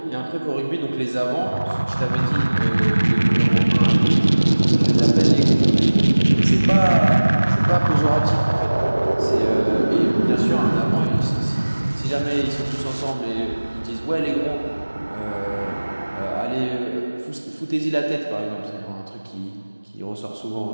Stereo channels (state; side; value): inverted; both; correlation -1.00